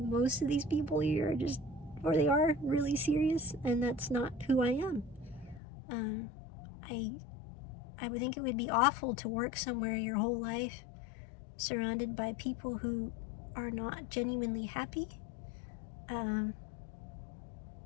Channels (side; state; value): right; drops out; at 5.6 s